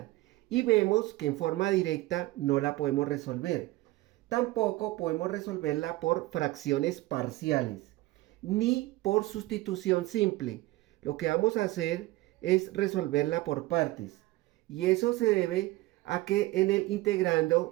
y vemos que en forma directa no la podemos resolver. Tampoco podemos resolverla por fracciones parciales ni por sustitución simple. Lo que vamos a hacer es resolverla por partes. Y eso se debe a que en el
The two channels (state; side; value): quieter; left; 18.8 dB